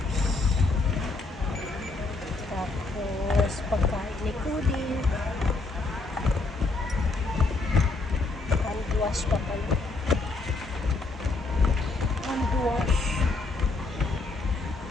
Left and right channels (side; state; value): right; quieter; 3.5 dB